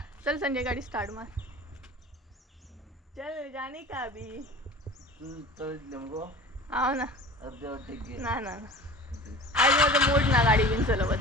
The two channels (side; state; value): both; normal; correlation 0.39